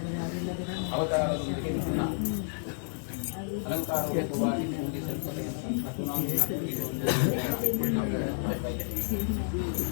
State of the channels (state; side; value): silent; right; digital silence